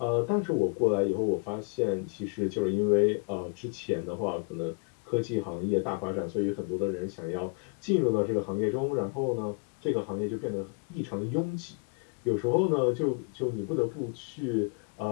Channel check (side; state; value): right; quieter; 38.4 dB